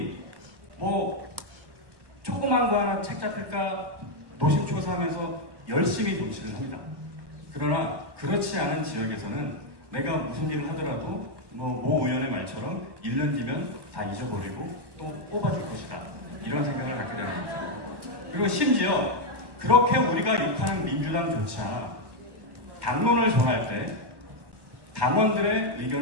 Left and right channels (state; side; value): late; left; 1.1 ms